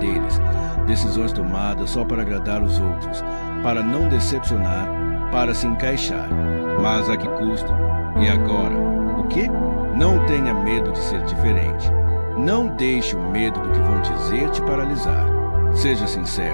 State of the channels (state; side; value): inverted; both; correlation -1.00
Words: decisões tomadas só para agradar os outros, para não decepcionar, para se encaixar. Mas a que custo? E agora? O quê? Não tenha medo de ser diferente. Não deixe o medo do que vão dizer te paralisar. Seja